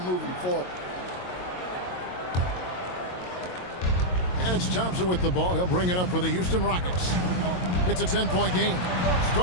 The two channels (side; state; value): right; late; 22 ms